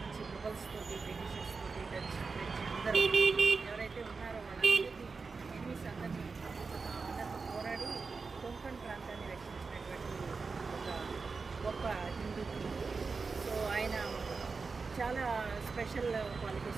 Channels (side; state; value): left; quieter; 4.5 dB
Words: నుంచి ముగల్స్ తోటి బ్రిటిషర్స్ తోటి డచ్ ఫ్రెంచ్ అందరూ ఎవరైతే ఉన్నారో వాళ్ళందరికీ ఎనిమిస్ అందరినీ అందరితో పోరాడి కొంకణ్ ప్రాంతాన్ని రక్షించినటువంటి ఒక గొప్ప హిందూ కింగ్. సో ఆయన చాలా స్పెషల్